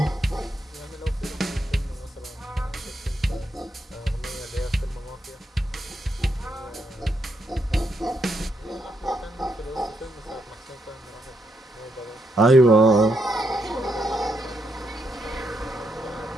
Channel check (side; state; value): both; normal; correlation 0.79